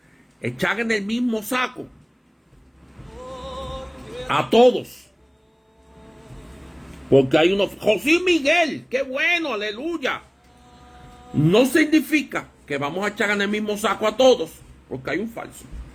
echar en el mismo saco a todos. Porque hay unos... José Miguel, qué bueno, aleluya. No significa que vamos a echar en el mismo saco a todos, porque hay un falso.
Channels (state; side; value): identical; both; correlation 1.00